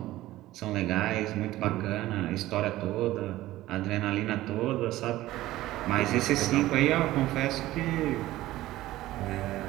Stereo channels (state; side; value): quieter; left; 16.0 dB